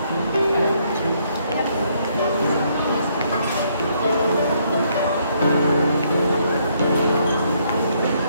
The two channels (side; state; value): both; inverted; correlation -0.71